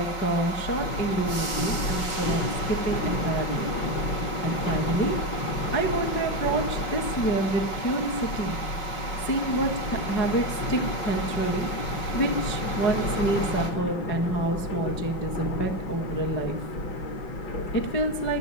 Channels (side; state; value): right; late; 5.4 ms